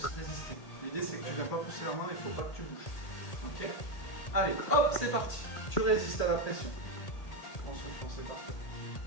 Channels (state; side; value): late; right; 1.8 ms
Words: résister. L'idée c'est que tu ne vas pas pousser la main mais il ne faut pas que tu bouges. Ok? Allez, hop, c'est parti. Tu résistes à la pression. En soufflant, c'est parfait.